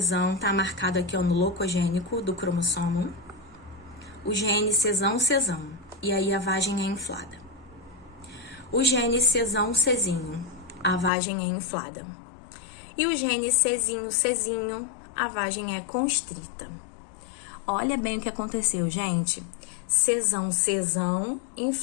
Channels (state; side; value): drops out; right; at 11.1 s